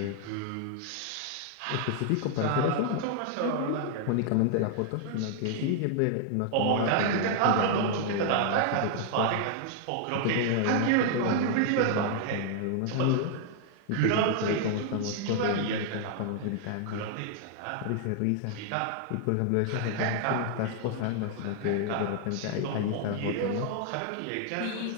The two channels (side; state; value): both; different; correlation 0.00